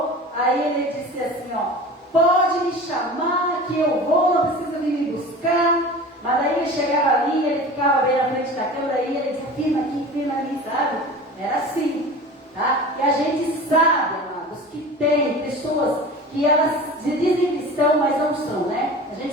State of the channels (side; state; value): both; normal; correlation 0.36